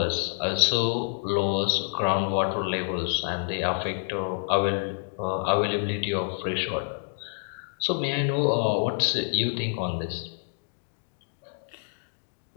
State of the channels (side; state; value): right; silent; digital silence